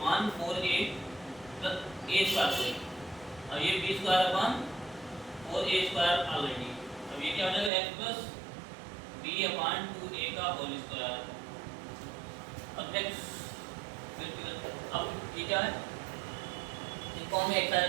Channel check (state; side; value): drops out; left; at 7.7 s